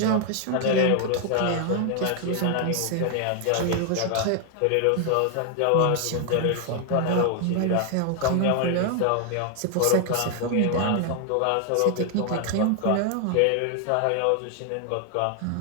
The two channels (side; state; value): both; different; correlation 0.00